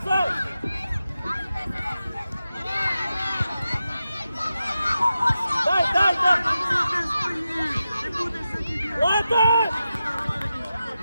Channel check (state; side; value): inverted; both; correlation -0.91